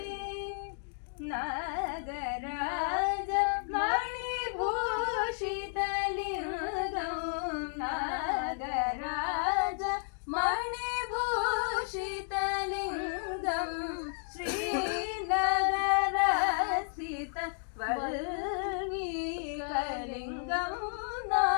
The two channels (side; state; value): right; silent; digital silence